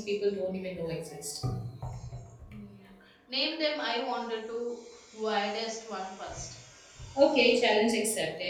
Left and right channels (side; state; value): both; identical; correlation 1.00